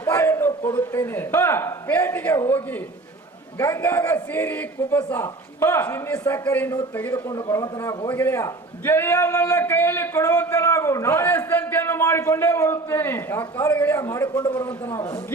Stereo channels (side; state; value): left; quieter; 3.2 dB